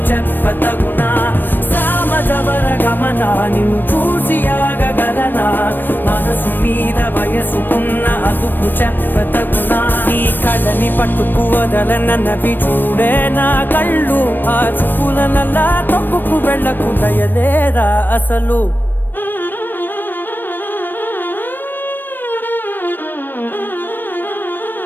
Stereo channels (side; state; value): right; late; 0.093 ms